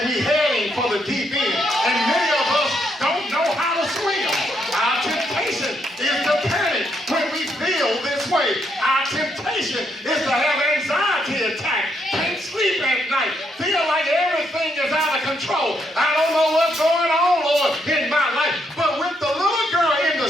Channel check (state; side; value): normal; both; correlation 0.76